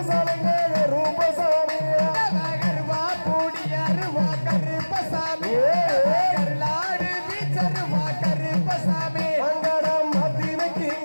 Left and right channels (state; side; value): inverted; both; correlation -1.00